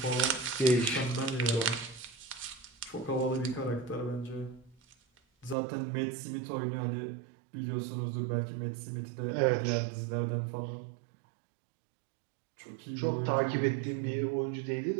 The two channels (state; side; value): drops out; left; at 5.6 s